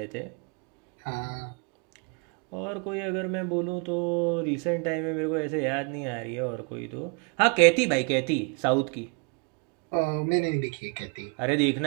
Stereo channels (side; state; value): left; quieter; 34.6 dB